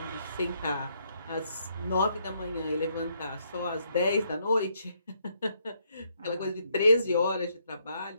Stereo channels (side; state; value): both; inverted; correlation -0.73